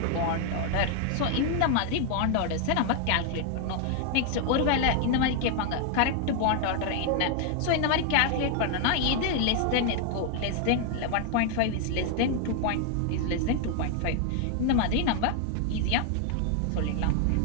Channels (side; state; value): both; different; correlation 0.00